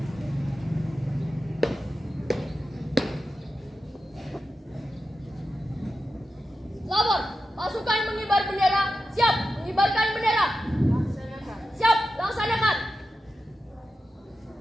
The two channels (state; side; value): normal; both; correlation 0.91